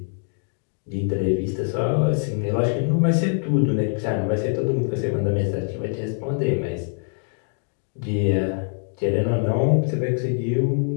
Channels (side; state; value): right; silent; 57 dB below the other